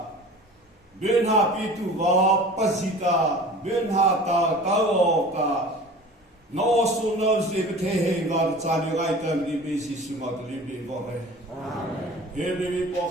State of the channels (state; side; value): normal; both; correlation 0.41